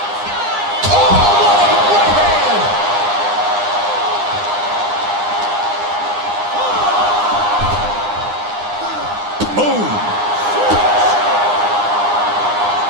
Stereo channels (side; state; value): left; late; 9.8 ms